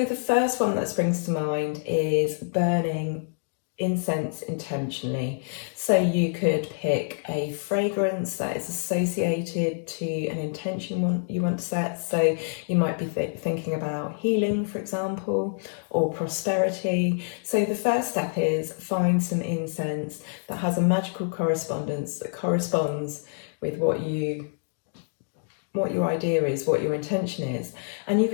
the first one that springs to mind is burning incense intentionally. So you could pick a fragrance that is associated to an intention you want to set. So you might be thinking about healing, for example, or prosperity. So the first step is find some incense that has a magical correspondence that corresponds with what your idea is, what your intention is. And you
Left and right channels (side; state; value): right; silent; digital silence